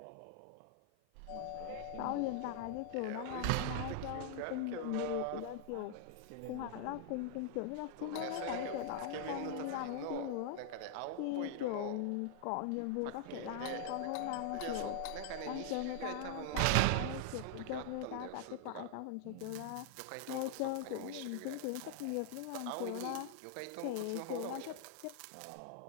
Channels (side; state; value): both; different; correlation 0.00